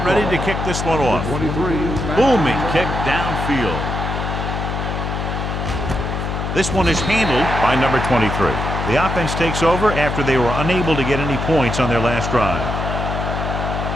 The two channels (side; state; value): left; noise; hum, 3 dB below the sound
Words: ready to kick this one off. Booming kick downfield. This one is handled by number 23. The offense takes over after they were unable to get any points on their last drive.